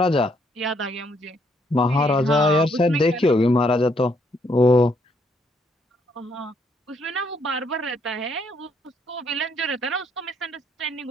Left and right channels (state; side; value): normal; both; correlation 0.71